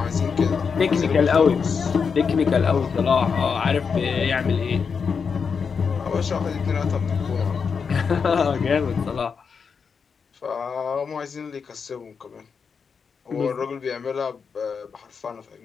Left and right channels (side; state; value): right; quieter; 5.9 dB